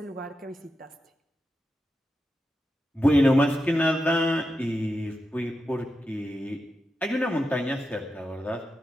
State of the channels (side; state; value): both; normal; correlation 0.89